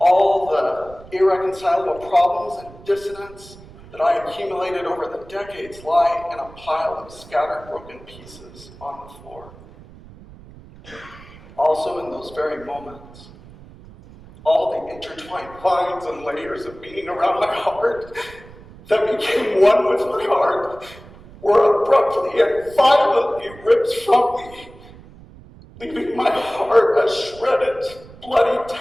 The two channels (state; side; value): noise; right; rumble, 20 dB below the sound